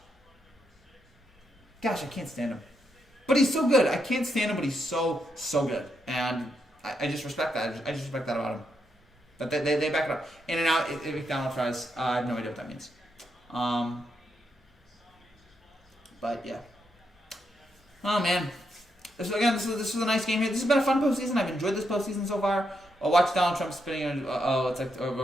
Gosh, I can't stand him. But he's so good. I can't stand him, but he's so good. And I just respect that. I just respect that about him. But they back it up. In and out, McDonald's fries. I have no idea what that means. But yeah. Oh man. This was a nice game here. This has been a fun postseason. I've enjoyed this postseason so far. I'll watch Donald Trump spitting in. It's like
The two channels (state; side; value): normal; both; correlation 0.80